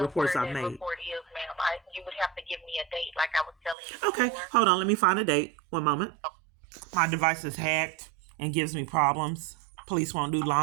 I've made. Report is, ma'am. You would have to give me a date, like I was telling you. Okay, before. Hold on. Let me find a date. One moment. My device is hacked and gives me problems. Police won't do law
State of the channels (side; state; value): left; drops out; at 3.8 s